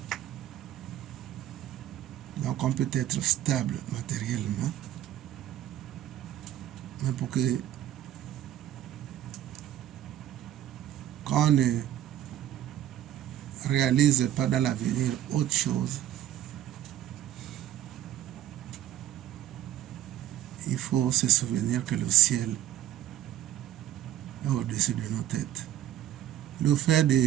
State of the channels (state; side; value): quieter; left; 12.3 dB